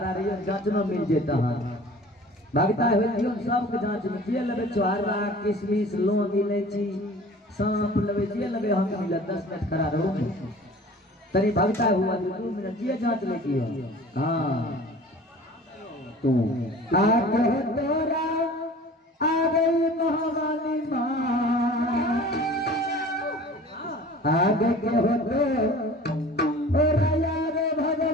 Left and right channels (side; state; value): both; normal; correlation 0.44